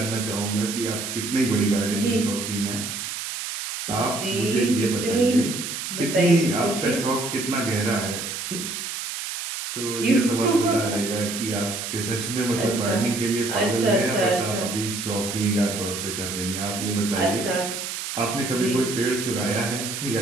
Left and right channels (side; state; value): right; noise; hiss, 5 dB below the sound